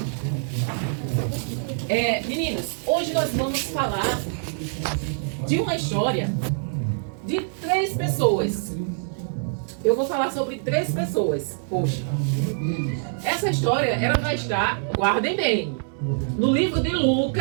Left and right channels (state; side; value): silent; left; digital silence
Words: Meninos, hoje nós vamos falar de uma história de 3 pessoas. Eu vou falar sobre 3 pessoas hoje. Essa história, ela vai estar, guardem bem, no livro de